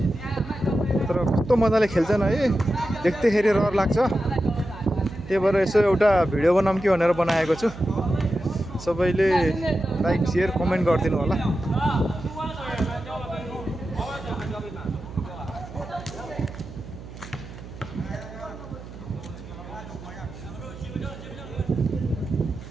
तर कस्तो मजाले खेल्छन् है, देख्दैखेरि रहर लाग्छ। त्यही भएर यसो एउटा भिडियो बनाऊँ कि भनेर बनाएको छु। सबैले लाइक शेयर कमेन्ट गरिदिनु होला।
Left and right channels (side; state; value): right; noise; hum, 14 dB below the sound